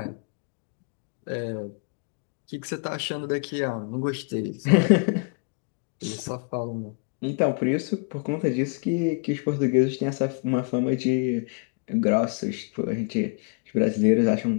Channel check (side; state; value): right; quieter; 37.6 dB